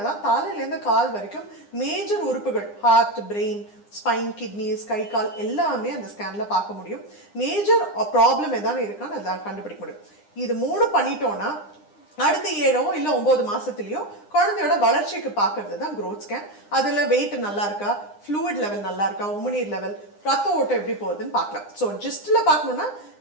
தான் தலையிலேருந்து கால் வரைக்கும் மேஜர் உறுப்புகள், ஹார்ட், பிரெயின், ஸ்பைன், கிட்னிஸ், கை கால் எல்லாமே அந்த ஸ்கேனில் பார்க்க முடியும். மேஜர் ப்ராப்ளம் எதாவது இருக்கான்னு அதை கண்டுபிடிக்க முடியும். இது 3 பண்ணிட்டோன்னா அடுத்த 7 இல்லை 9 மாதத்துலேயோ குழந்தையோட வளர்ச்சிக்கு பார்க்கறது தான் க்ரோத் ஸ்கேன். அதில் வெயிட் நல்லா இருக்கா, ஃப்ளூயிட் லெவல் நல்லா இருக்கா, உமிநீர் லெவல், ரத்த ஓட்டம் எப்படி போகுதுன்னு பார்க்கலாம். ஸோ ஜஸ்ட்டில் பார்க்கணுன்னா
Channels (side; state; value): right; late; 9.8 ms